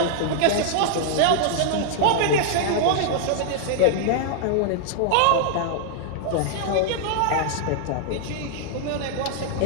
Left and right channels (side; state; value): both; different; correlation -0.01